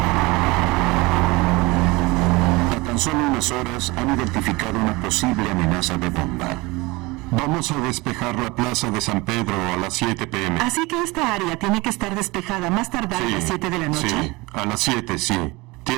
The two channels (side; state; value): left; quieter; 23.5 dB